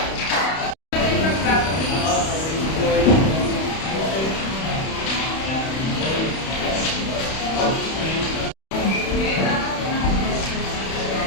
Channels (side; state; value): right; late; 31 ms